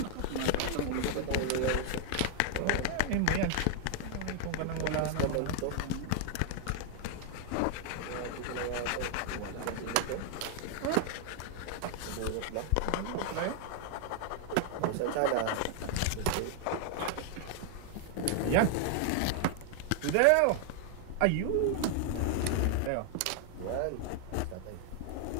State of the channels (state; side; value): different; both; correlation 0.00